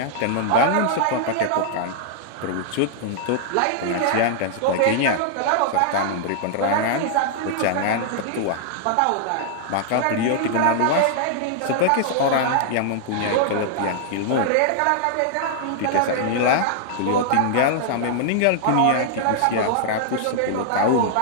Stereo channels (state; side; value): different; both; correlation -0.01